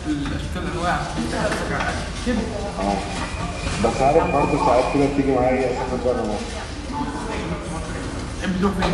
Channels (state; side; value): identical; both; correlation 1.00